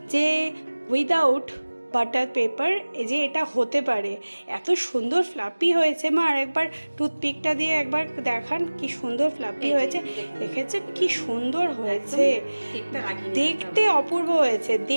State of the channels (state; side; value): inverted; both; correlation -1.00